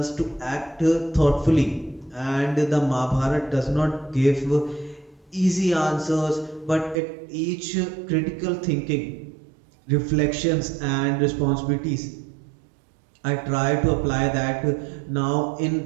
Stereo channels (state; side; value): drops out; left; at 7.0 s